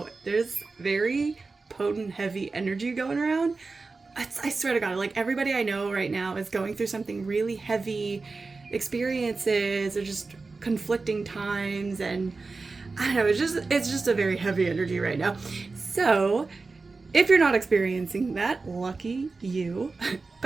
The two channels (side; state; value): left; quieter; 4.0 dB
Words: there's very potent, heavy energy going around. I swear to God, like everybody I know right now is going through something really heavy, experiences or just conflicting times, and I don't know, it's just a very heavy energy right now. So if you're not experiencing that, lucky you.